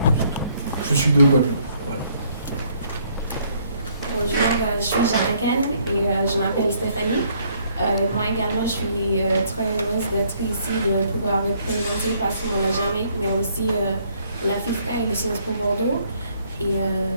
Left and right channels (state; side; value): inverted; both; correlation -0.66